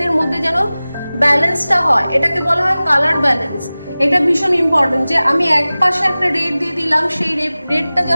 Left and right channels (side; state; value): both; inverted; correlation -0.98